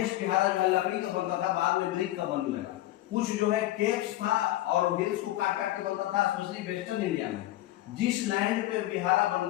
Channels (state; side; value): quieter; right; 15.6 dB